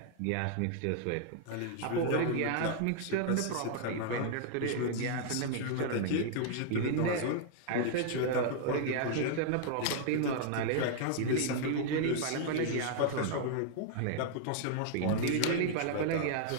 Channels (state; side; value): different; both; correlation 0.00